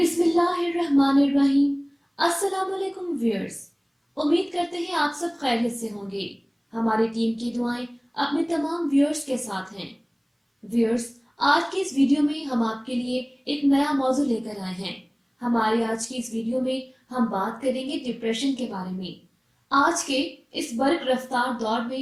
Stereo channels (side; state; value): both; identical; correlation 1.00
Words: अस्सलाम वालेकुम व्यूअर्स। उम्मीद करते हैं आप सब खैरियत से होंगे। हमारी टीम की दुआएं अपने तमाम व्यूअर्स के साथ हैं। व्यूअर्स, आज की इस वीडियो में हम आपके लिए एक नया मौजू लेकर आए हैं। हमारे आज की इस वीडियो में हम बात करेंगे डिप्रेशन के बारे में। आज के इस बर्क रफ्तार दौर